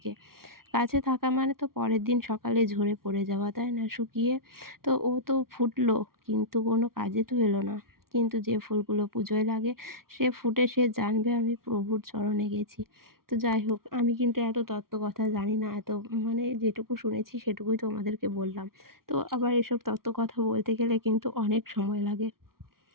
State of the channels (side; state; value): left; late; 0.93 ms